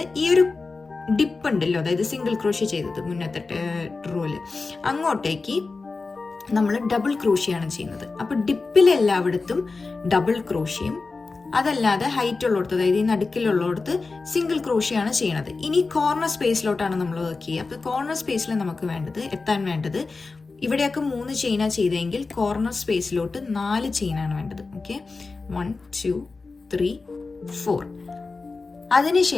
ഈ ഒരു ഡിപ്പ് ഉണ്ടല്ലോ, അതായത് സിംഗിൾ ക്രോഷ്യ ചെയ്തത് മുന്നത്തെ റോല്, അങ്ങോട്ടേക്ക് നമ്മൾ ഡബിൾ ക്രോഷ്യാണ് ചെയ്യുന്നത്. അപ്പോൾ ഡിപ്പിലെല്ലായിടത്തും ഡബിൾ ക്രോഷ്യം, അതല്ലാതെ ഹൈറ്റ് ഉള്ളിടത്ത്, അതായത് ഈ നടുക്കിലുള്ളിടത്ത് സിംഗിൾ ക്രോഷ്യാണ് ചെയ്യണത്. ഇനി കോർണർ സ്പേസിലോട്ടാണ് നമ്മൾ വർക്ക് ചെയ്യുക. അപ്പോൾ കോർണർ സ്പേസിൽ നമുക്ക് എത്താൻ വേണ്ടത് ഇവിടെയൊക്കെ 3 ചെയിനാണ് ചെയ്തെങ്കിൽ കോർണർ സ്പേസിലോട്ട് 4 ചെയിനാണ് വേണ്ടത്. ഓക്കെ, 1 2 3 4.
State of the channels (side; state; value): right; quieter; 4.0 dB